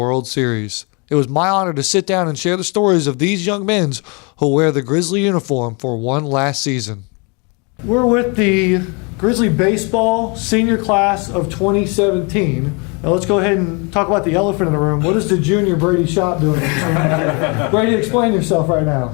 Series. It was my honor to sit down and share the stories of these young men who wear the Grizzly uniform for one last season. We're with the Grizzly Baseball Senior Class of 2017. Now let's go ahead and talk about the elephant in the room. What is the junior Brady Shop doing? Brady, explain yourself right now.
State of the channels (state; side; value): quieter; right; 32.0 dB